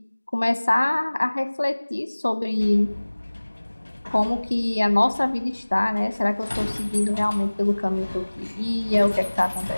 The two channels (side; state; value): both; inverted; correlation -1.00